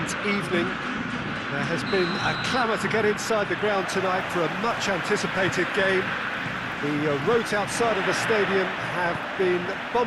evening. There has been a clamour to get inside the ground tonight for a much-anticipated game. The roads outside of the stadium have been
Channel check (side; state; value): both; identical; correlation 1.00